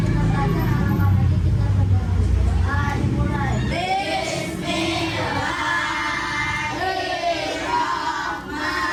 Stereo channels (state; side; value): identical; both; correlation 1.00